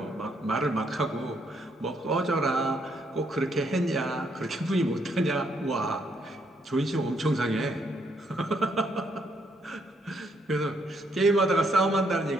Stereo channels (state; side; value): normal; both; correlation 0.73